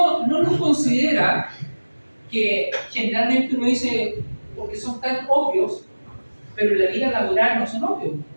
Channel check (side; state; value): both; inverted; correlation -1.00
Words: no los considera, que generalmente uno dice porque son tan obvios, pero en la vida laboral no son obvios,